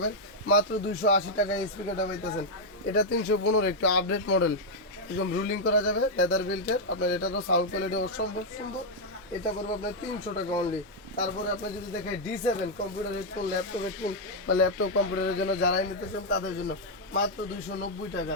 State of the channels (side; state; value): both; normal; correlation -0.02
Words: মাত্র 280 টাকা এই স্পিকারটা পাইতেছেন। এটা 315, একটু আপডেট মডেল, একদম রুলিং করা যাবে, লেদার বিল্টের। আপনার এটারও সাউন্ড কোয়ালিটি অসম্ভব সুন্দর, এটা করবো আপনার 300 টাকা অনলি। তারপরে আপনি যদি দেখেন D7 computer headphone, laptop headphone বা ল্যাপটপ কম্পিউটারের জন্য যারাই নিতে চান তাদের জন্য মাত্র 290 টাকা।